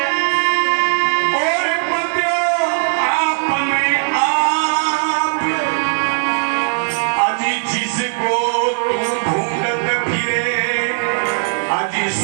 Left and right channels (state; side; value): silent; left; digital silence